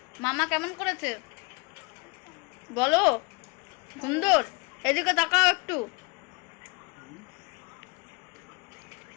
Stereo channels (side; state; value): right; quieter; 29.1 dB